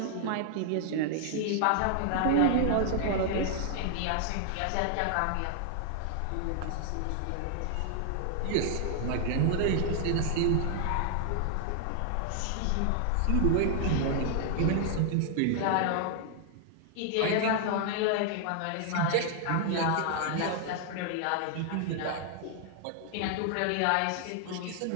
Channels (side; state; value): both; different; correlation -0.01